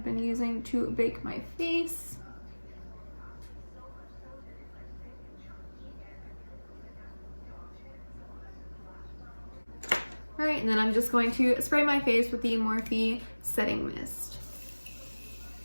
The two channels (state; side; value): inverted; both; correlation -1.00